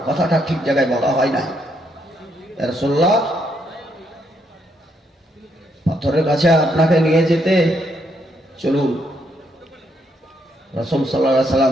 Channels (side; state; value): both; normal; correlation 0.75